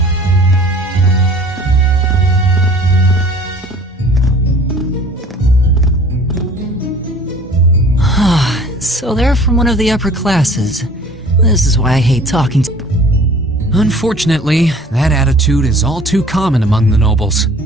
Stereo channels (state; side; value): normal; both; correlation 0.48